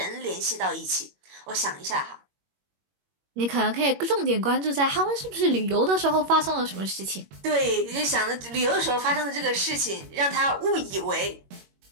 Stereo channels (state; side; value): late; left; 21 ms